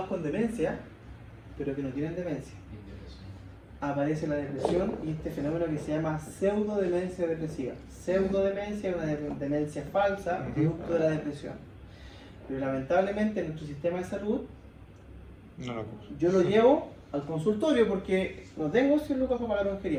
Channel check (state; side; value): identical; both; correlation 1.00